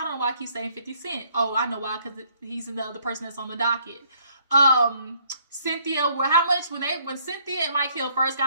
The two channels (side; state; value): both; inverted; correlation -0.65